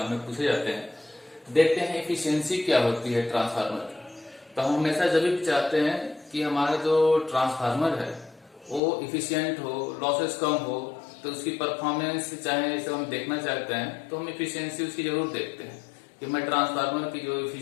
में पूछे जाते हैं। देखते हैं एफिशिएंसी क्या होती है ट्रांसफार्मर की। तो हम हमेशा जब भी चाहते हैं कि हमारा जो ट्रांसफार्मर है वो इफिशियंट हो, लॉसेस कम हो, तो उसकी परफॉर्मेंस चाहे जैसे हम देखना चाहते हैं तो हम इफिशियंसी उसकी जरूर देखते हैं कि मैं ट्रांसफार्मर की जो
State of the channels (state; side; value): drops out; right; at 8.8 s